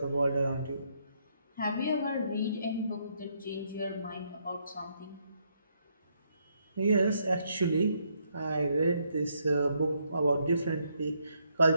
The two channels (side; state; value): both; inverted; correlation -0.74